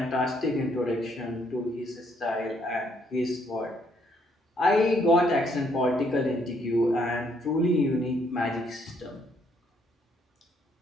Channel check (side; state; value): both; normal; correlation 0.70